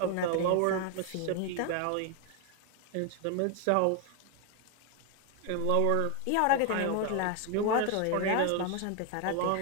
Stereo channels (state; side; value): different; both; correlation 0.01